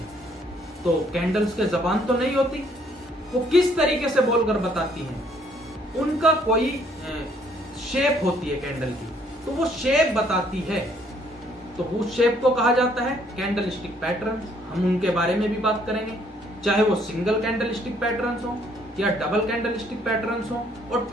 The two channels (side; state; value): both; normal; correlation 0.65